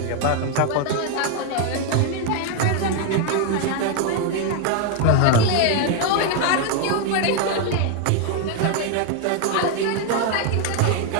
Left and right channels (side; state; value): both; different; correlation 0.01